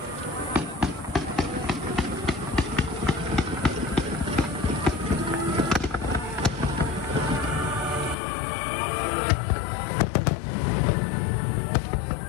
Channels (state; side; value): drops out; right; at 8.2 s